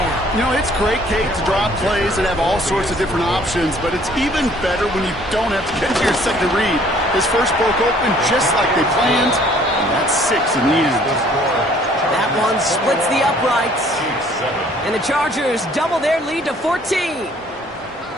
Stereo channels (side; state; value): both; normal; correlation 0.58